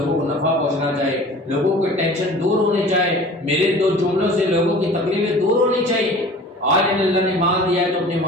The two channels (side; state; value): both; normal; correlation 0.43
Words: کو نفع پہنچنا چاہیے، لوگوں کو ٹینشن دور ہونی چاہیے، میرے دو جملوں سے لوگوں کی تکلیفیں دور ہونی چاہیے۔ آج اللہ نے مال دیا ہے تو اپنے